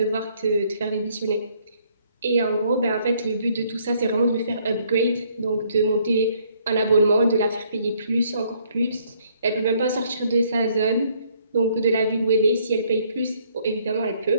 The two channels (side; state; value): both; inverted; correlation -0.66